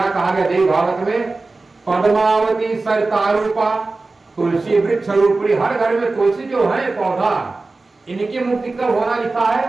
कहा गया देव भागवत में? पद्मावती सरिता रूपा तुलसी वृक्ष रूपी। हर घर में तुलसी जो है पौधा, इनकी मुक्ति कब होना लिखा है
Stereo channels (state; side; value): quieter; left; 3.5 dB